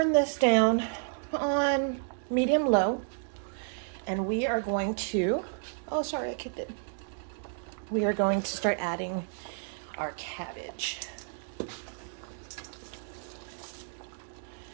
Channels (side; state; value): left; silent; digital silence